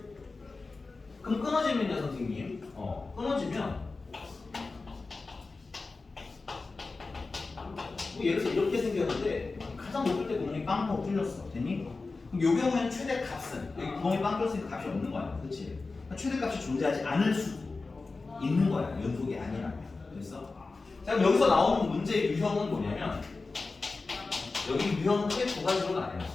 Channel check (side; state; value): right; quieter; 3.8 dB